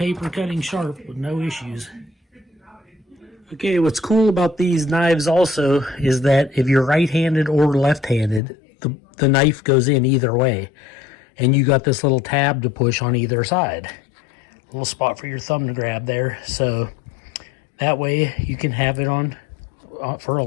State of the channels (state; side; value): drops out; right; at 8.4 s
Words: cutting sharp with no issues. Okay, what's cool about these knives also is that if you're right-handed or left-handed, the knife goes in either way. And you got this little tab to push on either side. little spot for your thumb to grab there. So that way you can have it on for a